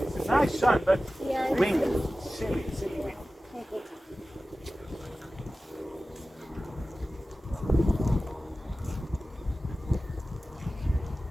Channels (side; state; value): both; normal; correlation 0.95